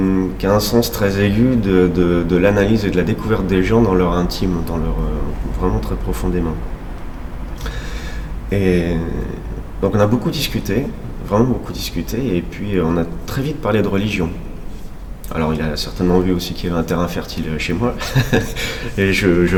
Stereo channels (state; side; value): identical; both; correlation 1.00